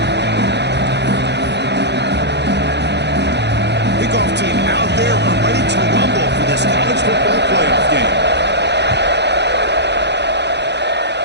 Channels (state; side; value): late; left; 0.50 ms